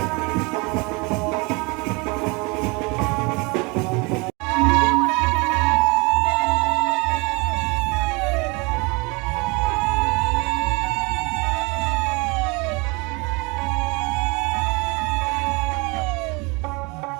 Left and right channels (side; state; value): left; quieter; 27.9 dB